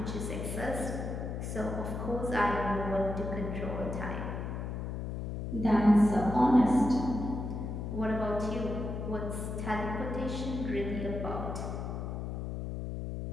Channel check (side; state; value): left; noise; hum, 4 dB below the sound